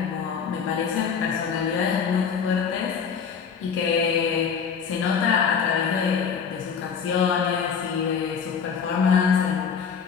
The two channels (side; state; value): right; quieter; 6.6 dB